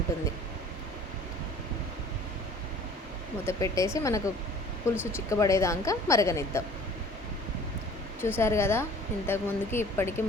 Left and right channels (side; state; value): both; normal; correlation 0.49